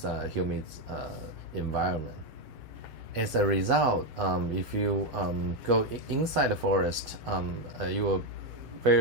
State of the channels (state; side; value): late; left; 3.3 ms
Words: humid environment. As a result, if you go inside the forest, you will